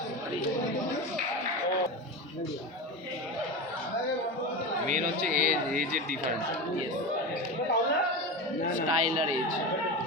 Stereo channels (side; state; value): both; normal; correlation 0.23